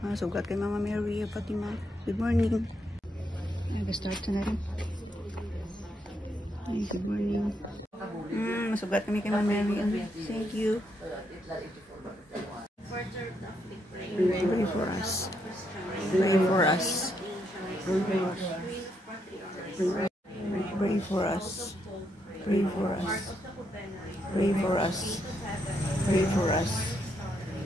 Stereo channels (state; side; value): normal; both; correlation 0.78